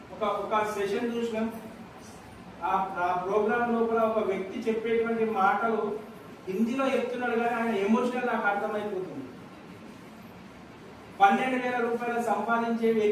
ఒక సెషన్ చూసినాం. ఆ ప్రోగ్రామ్ లోపల ఒక వ్యక్తి చెప్పేటువంటి మాటలు హిందీలో చెప్తున్నాడు, కానీ ఆయన ఎమోషనల్ నాకు అర్థమైపోతుంది. 12,000 రూపాయలు సంపాదించే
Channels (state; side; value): identical; both; correlation 1.00